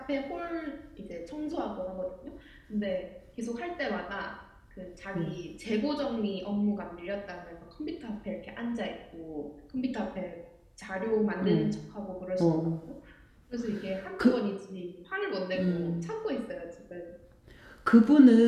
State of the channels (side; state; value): both; identical; correlation 1.00